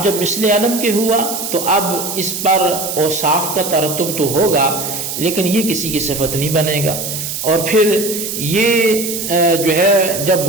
جب مثل علم کے ہوا تو اب اس پر اوصاف کا ترتب تو ہوگا لیکن یہ کسی کی صفت نہیں بنے گا، اور پھر یہ جو ہے جب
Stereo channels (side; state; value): right; noise; hiss, 5 dB below the sound